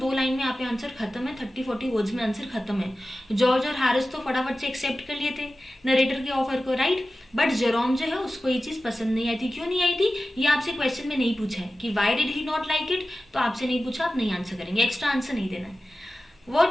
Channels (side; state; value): both; normal; correlation 0.95